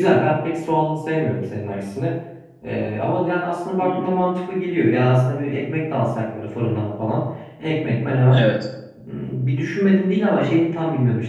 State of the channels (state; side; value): identical; both; correlation 1.00